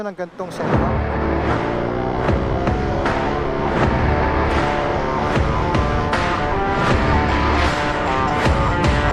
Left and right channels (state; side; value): identical; both; correlation 1.00